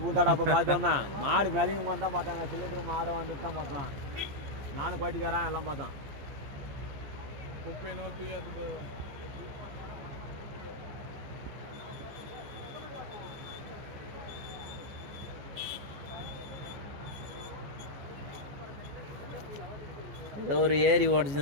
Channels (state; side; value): late; left; 15 ms